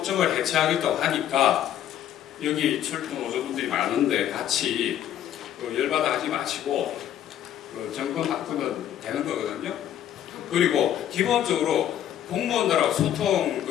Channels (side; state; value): right; quieter; 10.9 dB